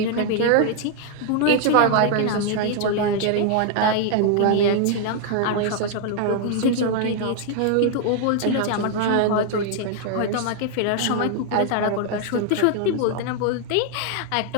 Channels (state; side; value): different; both; correlation 0.00